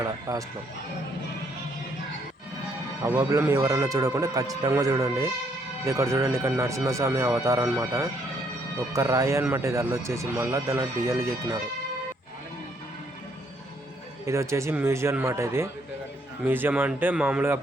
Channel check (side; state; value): both; normal; correlation 0.70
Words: లాస్ట్లో అవోబలం ఎవరైనా చూడకుండా ఖచ్చితంగా చూడండి. ఇది ఇక్కడ చూడండి, ఇక్కడ నరసింహస్వామి అవతారం అనమాట. ఒక్క రాయి అనమాట ఇది అల్లొచ్చేసి. మళ్ళీ దానిలో డిజైన్లు చెక్కినారు. ఇది వచ్చేసి మ్యూజియం అనమాట. ఇది మ్యూజియం అంటే మామూలుగా